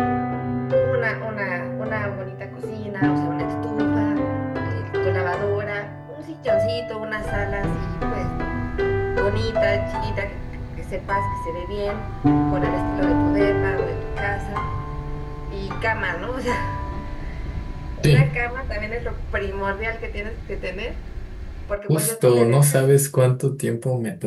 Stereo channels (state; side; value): identical; both; correlation 1.00